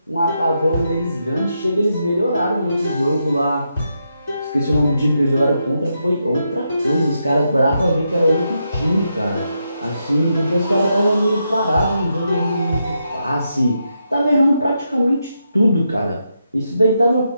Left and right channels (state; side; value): inverted; both; correlation -0.83